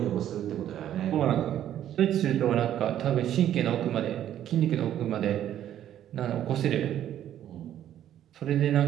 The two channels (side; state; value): left; quieter; 11.2 dB